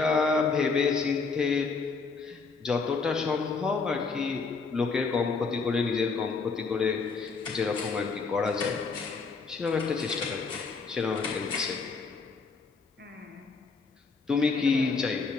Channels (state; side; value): quieter; right; 4.7 dB